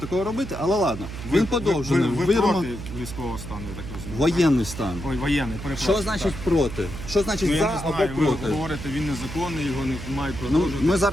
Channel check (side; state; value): right; noise; hum, 9 dB below the sound